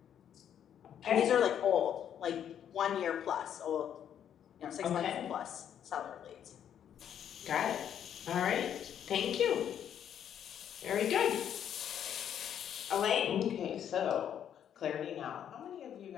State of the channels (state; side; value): quieter; right; 9.4 dB